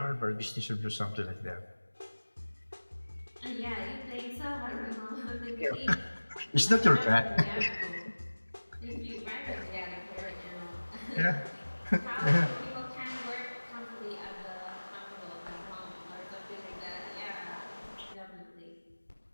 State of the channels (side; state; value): both; inverted; correlation -1.00